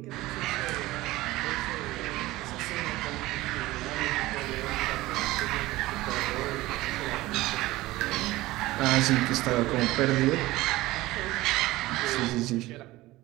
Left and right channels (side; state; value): left; quieter; 18.3 dB